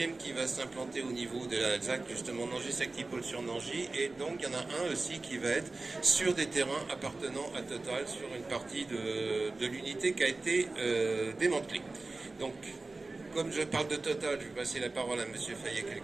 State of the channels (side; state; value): left; quieter; 3.4 dB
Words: qui va s'implanter au niveau de la ZAC, justement Nangy-Sactipol sur Nangy, et donc il y en a un aussi qui va être sur des terrains appartenant à Total, sur une partie de l'unité qui a été démantelée. Donc, comme je parle de Total, je vais passer la parole à M. Fayet